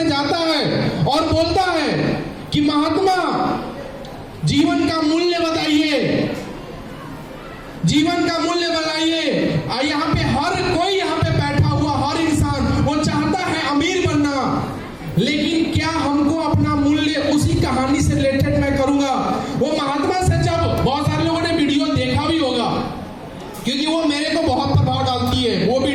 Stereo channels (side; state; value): both; identical; correlation 1.00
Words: जाता है और बोलता है कि महात्मा जीवन का मूल्य बताइए, जीवन का मूल्य बताइए। यहाँ पे हर कोई यहाँ पे बैठा हुआ हर इंसान वो चाहता है अमीर बनना, लेकिन क्या हमको अपना मूल्य उसी कहानी से रिलेटेड मैं करूंगा। वो महात्मा से जब बहुत सारे लोगों ने वीडियो देखा भी होगा, क्योंकि वो मेरे को बहुत प्रभाव डालती है। वो